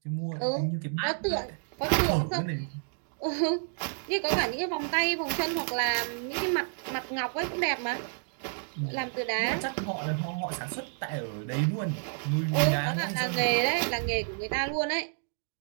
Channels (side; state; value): left; silent; digital silence